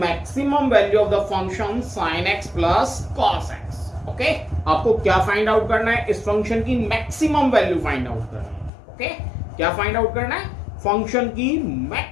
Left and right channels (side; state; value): right; drops out; at 8.7 s